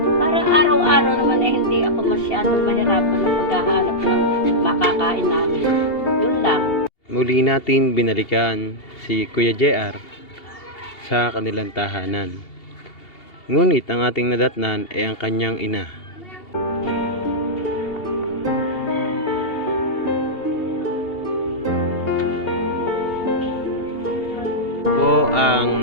para araw-araw naman ay hindi ako masyadong mahirapan ng paghahanap ng makakain namin. Yun lang. Muli natin binalikan si Kuya JR sa kanilang tahanan. Ngunit ang ating nadatnan ay ang kanyang ina. Po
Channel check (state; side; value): late; right; 2.8 ms